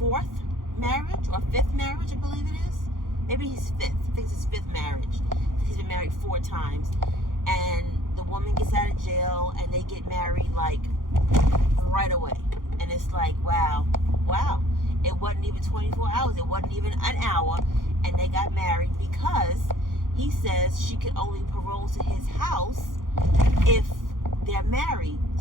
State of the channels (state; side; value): late; left; 0.90 ms